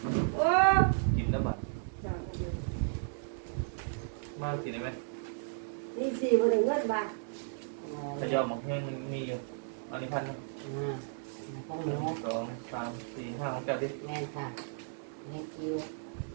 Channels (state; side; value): silent; left; digital silence